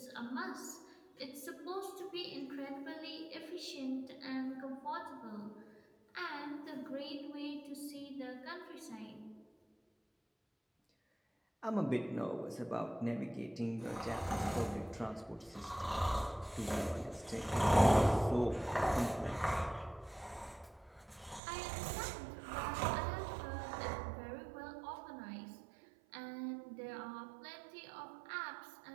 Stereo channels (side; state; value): left; drops out; at 21.4 s